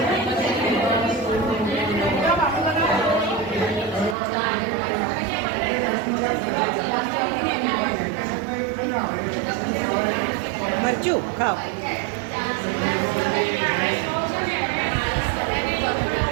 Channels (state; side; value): drops out; left; at 4.2 s